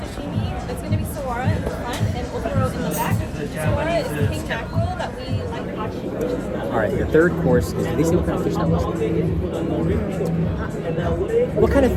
It's going to be sawara in the front and otoro in the back. Sawara is king mackerel that we like watching. All right, your third course is, did they say what kind of fish that was? What kind of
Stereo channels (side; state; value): both; identical; correlation 1.00